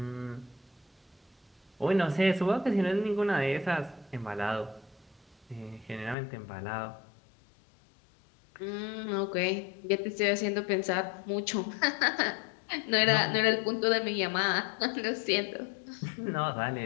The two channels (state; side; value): drops out; right; at 6.2 s